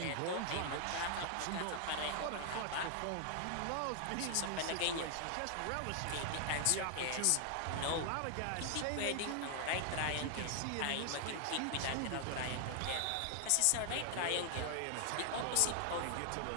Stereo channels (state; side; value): different; both; correlation 0.00